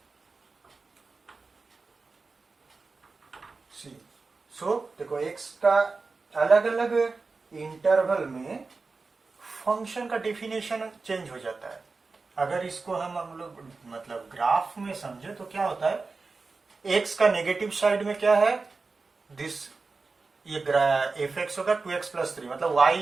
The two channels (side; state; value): left; quieter; 4.1 dB